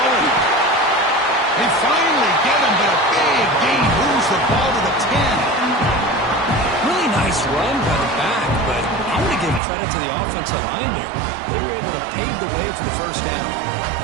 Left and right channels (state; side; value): drops out; left; at 9.6 s